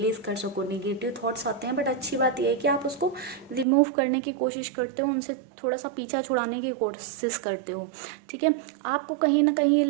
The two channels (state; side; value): drops out; left; at 3.7 s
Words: कर सको। नेगेटिव थॉट्स आते हैं, बट अच्छी बात यह है कि आप उसको रिमूव करने की कोशिश करते हो, उनसे थोड़ा सा पीछा छुड़ाने की कोशिश करते हो, ठीक है। आपको कहीं ना कहीं ये